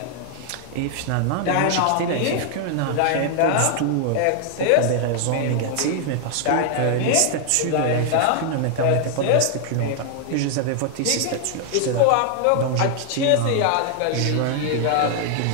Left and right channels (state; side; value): different; both; correlation 0.00